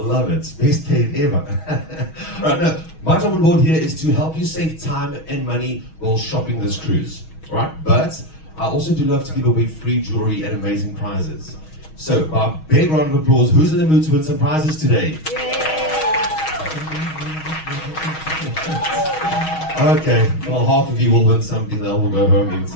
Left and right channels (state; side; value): late; right; 6.3 ms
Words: it. Best paid ever. All right, now, my job on board here is to help you save time and money while shopping this cruise. All right, but I also do love to give away free jewelry and amazing prizes. So, by a big round of applause, who's in the mood to win some prizes today? Okay, well, half of you will win something that will go home